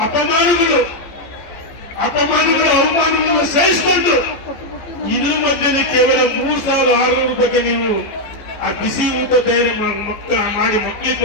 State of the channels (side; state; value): right; late; 15 ms